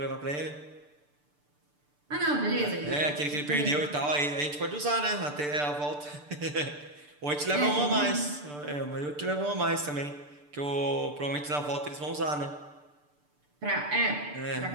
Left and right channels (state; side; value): late; left; 6.8 ms